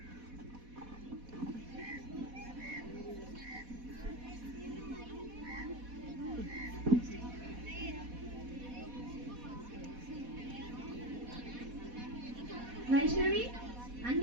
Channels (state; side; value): late; left; 4.1 ms